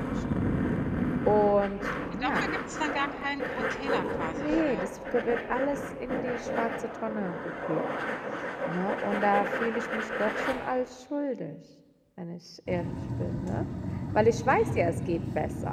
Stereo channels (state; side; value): identical; both; correlation 1.00